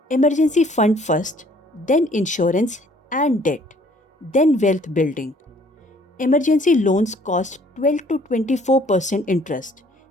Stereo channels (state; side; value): normal; both; correlation 0.59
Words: Emergency fund first, then insurance and debt, then wealth building. Emergency loans cost 12 to 24% interest.